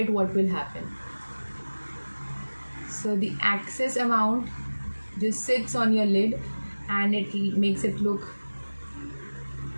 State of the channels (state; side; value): inverted; both; correlation -1.00